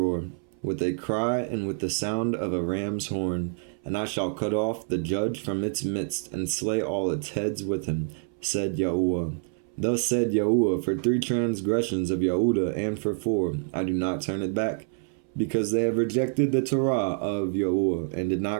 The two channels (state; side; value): silent; left; 60 dB below the other